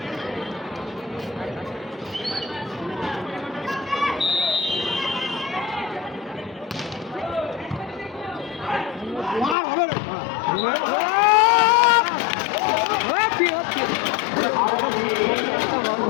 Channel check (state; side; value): drops out; right; at 9.6 s